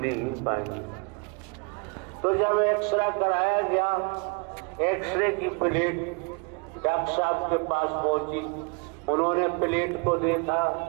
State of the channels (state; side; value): quieter; left; 33.9 dB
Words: पाएंगे। तो जब एक्सरे कराया गया, एक्सरे की प्लेट डॉक्टर साहब के पास पहुंची, उन्होंने प्लेट को देखा,